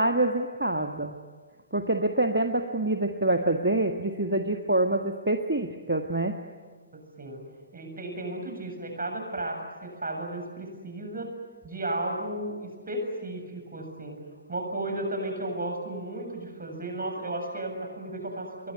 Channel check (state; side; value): inverted; both; correlation -0.44